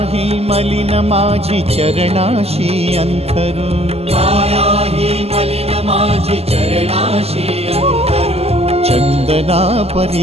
ही मलिन माझी चरणाशी अंतरू, काया ही मलिन माझी चरणाशी अंतरू. चंदना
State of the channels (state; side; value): late; left; 0.29 ms